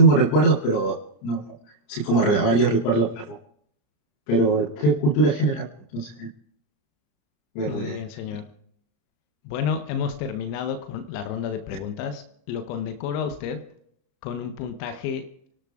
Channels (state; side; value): late; right; 34 ms